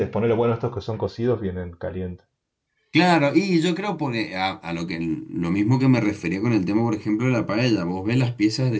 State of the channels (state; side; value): identical; both; correlation 1.00